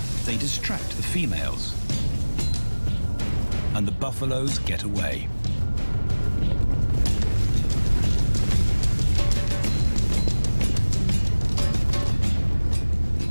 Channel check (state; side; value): inverted; both; correlation -1.00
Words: they distract the females, and the buffaloes get away.